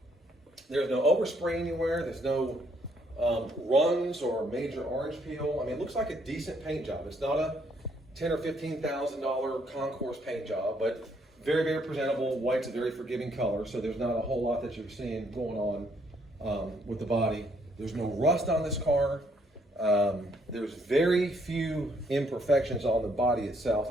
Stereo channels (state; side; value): normal; both; correlation 0.69